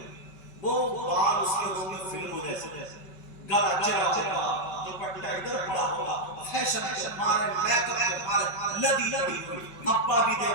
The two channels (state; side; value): late; right; 5.2 ms